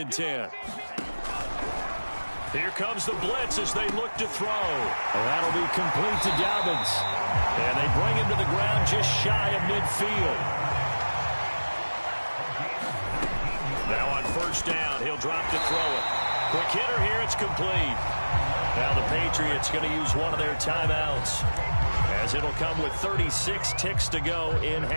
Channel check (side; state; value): both; inverted; correlation -1.00